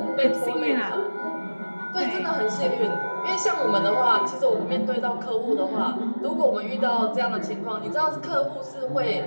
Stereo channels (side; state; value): both; inverted; correlation -1.00